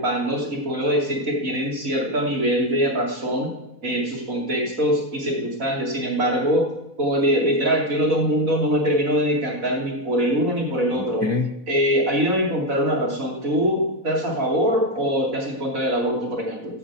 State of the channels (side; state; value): left; late; 4.1 ms